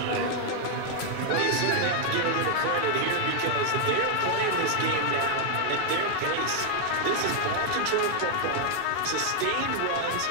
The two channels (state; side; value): different; both; correlation 0.00